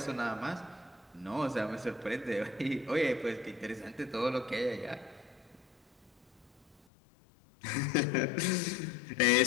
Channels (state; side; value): drops out; right; at 6.8 s